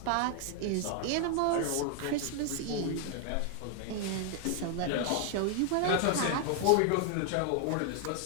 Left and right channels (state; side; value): different; both; correlation 0.00